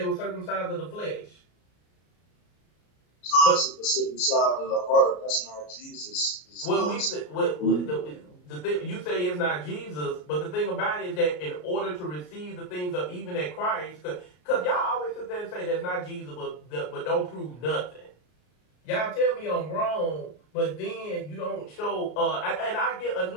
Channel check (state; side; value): late; right; 33 ms